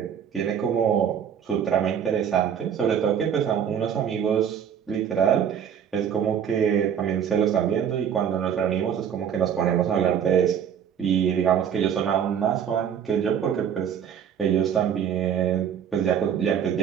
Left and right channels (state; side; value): quieter; left; 8.5 dB